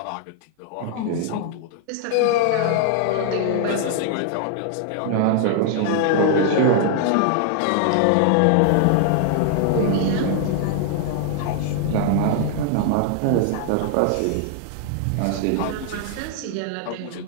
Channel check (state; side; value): different; both; correlation 0.00